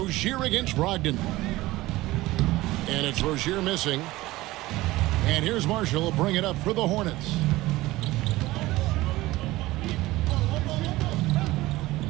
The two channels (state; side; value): quieter; left; 18.4 dB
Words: against Brogdon. And it's Rozier missing. And here's Marshall will bring it up for the Hornets.